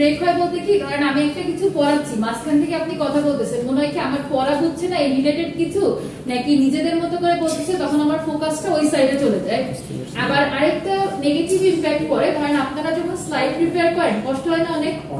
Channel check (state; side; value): identical; both; correlation 1.00